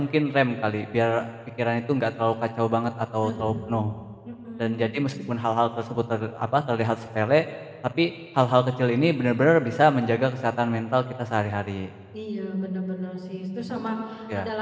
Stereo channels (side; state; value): both; identical; correlation 1.00